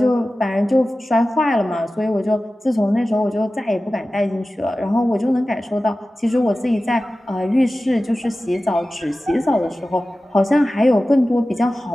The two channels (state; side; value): normal; both; correlation 0.95